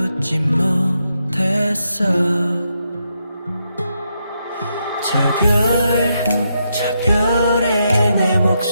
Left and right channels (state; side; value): inverted; both; correlation -0.81